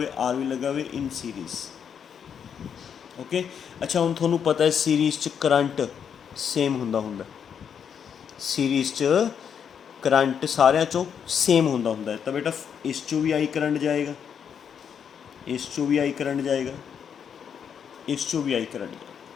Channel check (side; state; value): right; quieter; 7.7 dB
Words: R भी लग्या होवे in series। ओके, अच्छा हुण तुहानूं पता है सीरीज़ च करंट सेम हुंदा, सीरीज़ च करंट सारियां चों सेम हुंदा है। तो बेटा इस चों भी आई करंट जाएगा, इस चों भी आई करंट जाएगा, इस चों भी आई करंट